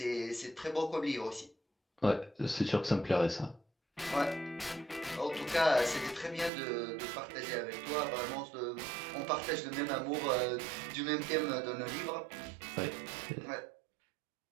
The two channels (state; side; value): drops out; left; at 6.5 s